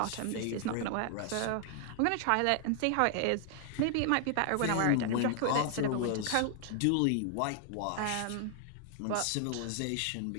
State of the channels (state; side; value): different; both; correlation 0.00